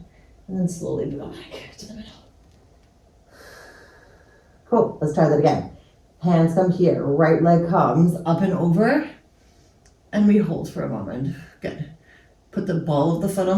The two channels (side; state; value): both; identical; correlation 1.00